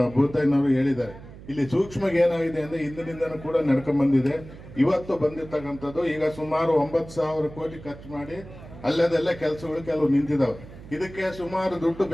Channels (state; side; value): noise; right; hum, 17 dB below the sound